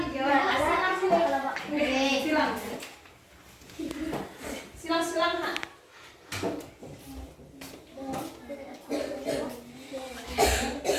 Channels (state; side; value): identical; both; correlation 1.00